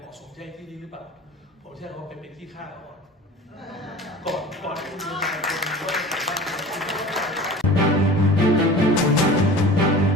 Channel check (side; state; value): both; normal; correlation 0.39